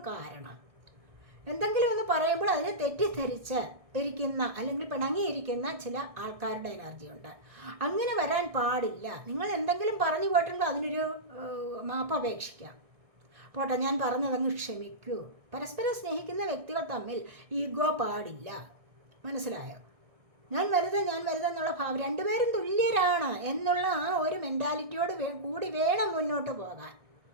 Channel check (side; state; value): left; late; 1.6 ms